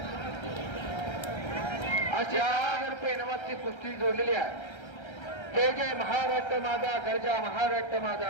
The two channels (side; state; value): right; late; 1.3 ms